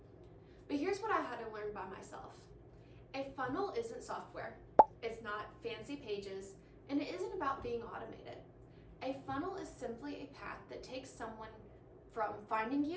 But here's what I had to learn by myself. A funnel isn't software, it's not fancy pages, and it isn't about being automated. A funnel is simply a path that takes someone from finding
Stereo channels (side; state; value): both; identical; correlation 1.00